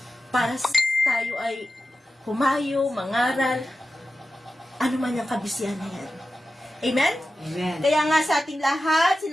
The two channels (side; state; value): both; normal; correlation 0.92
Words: para tayo ay humayo, mangaral, ano man yung kabisihan na yan. Amen? Amen. Kaya nga sa ating lahat,